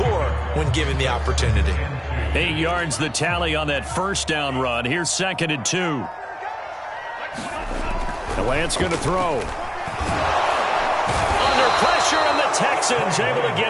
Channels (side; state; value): both; identical; correlation 1.00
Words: when given the opportunity. 8 yards the tally on that first down run. Here's 2nd and 2. The Lance going to throw. Under pressure, and the Texans able to